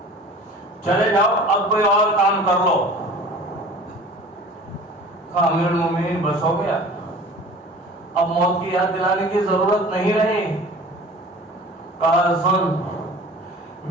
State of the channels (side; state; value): both; normal; correlation 0.43